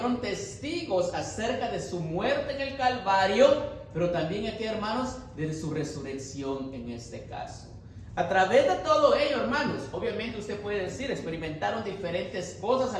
testigos acerca de su muerte en el Calvario, pero también aquí, hermanos, de su resurrección en este caso. A través de todo ello, hermanos, obviamente usted puede decir, experimentaron diferentes cosas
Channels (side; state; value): both; identical; correlation 1.00